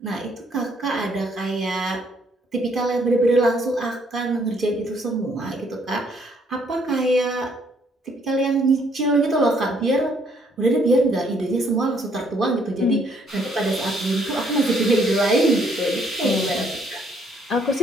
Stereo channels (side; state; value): both; normal; correlation 0.67